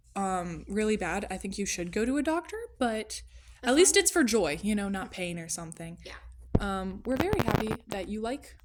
really bad. I think you should go to a doctor, but at least it's for joy, not pain or something. Yeah. We're very happy that you like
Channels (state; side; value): identical; both; correlation 1.00